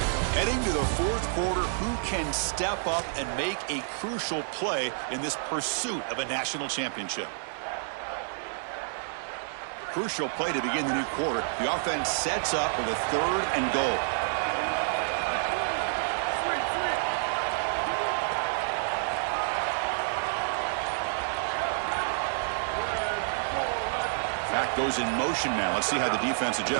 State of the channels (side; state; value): left; silent; 59 dB below the other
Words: Heading to the 4th quarter, who can step up and make a crucial play in this pursuit of a national championship? Crucial play to begin the new quarter. The offense sets up with a 3rd and goal. Back goes in motion now. Let's see how the defense